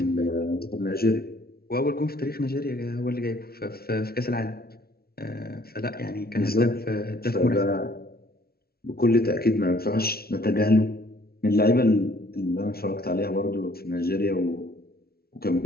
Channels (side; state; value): right; late; 0.44 ms